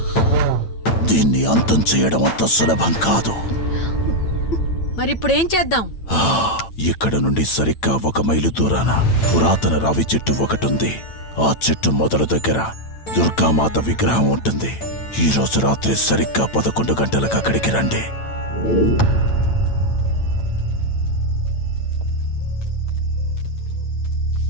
దీన్ని అంతం చేయడం అంత సులభం కాదు. మరిప్పుడేం చేద్దాం? ఇక్కడ నుండి సరిగ్గా 1 మైలు దూరాన పురాతన రావి చెట్టు ఒకటుంది. ఆ చెట్టు మొదలు దగ్గర దుర్గామాత విగ్రహం ఉంటుంది. ఈ రోజు రాత్రి సరిగ్గా 11 గంటలకు అక్కడికి రండి.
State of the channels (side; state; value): right; late; 8.9 ms